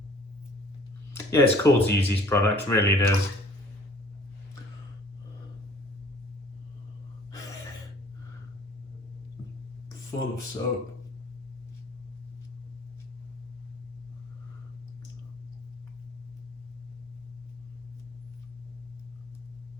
Yeah, it's cool to use these products, really it is. Full of soap.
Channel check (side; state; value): both; normal; correlation 0.53